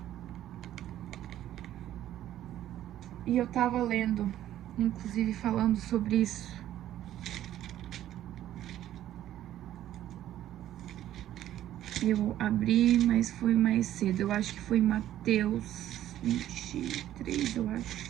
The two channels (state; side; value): quieter; left; 12.5 dB